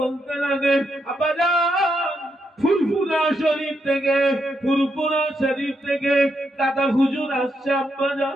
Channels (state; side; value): normal; both; correlation 0.80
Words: লাগে, আব্বাজান ফুরফুরা শরীফ থেকে, ফুরফুরা শরীফ থেকে দাদা হুজুর আসছে আব্বাজান,